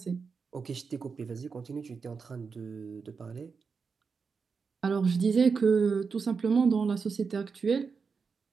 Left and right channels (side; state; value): left; quieter; 5.3 dB